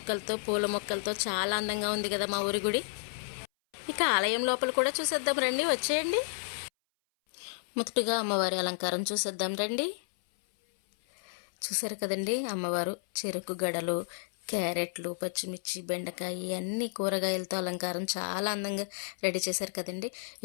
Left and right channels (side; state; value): right; silent; 57 dB below the other